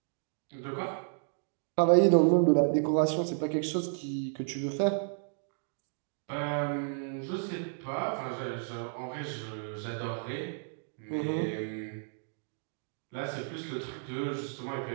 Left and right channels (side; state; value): left; silent; digital silence